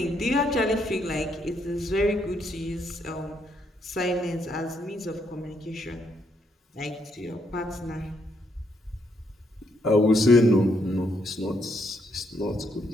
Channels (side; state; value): both; normal; correlation 0.74